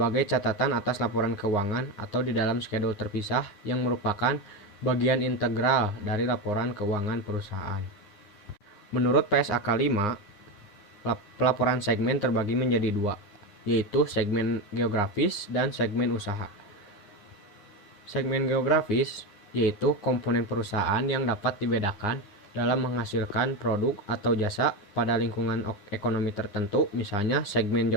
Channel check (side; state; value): right; late; 9.7 ms